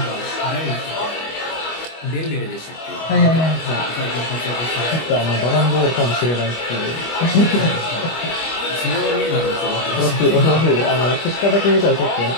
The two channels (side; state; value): right; late; 25 ms